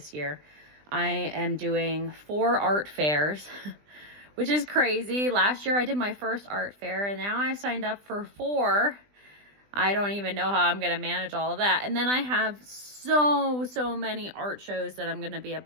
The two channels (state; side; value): late; left; 20 ms